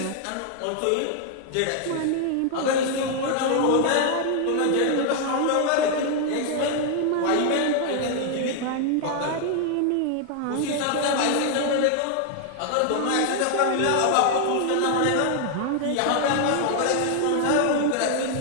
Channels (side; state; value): both; different; correlation 0.00